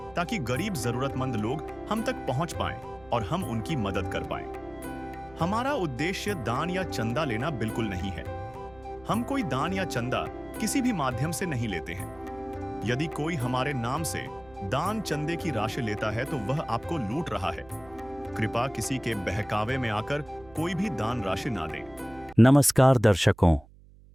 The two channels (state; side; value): noise; right; hum, 24 dB below the sound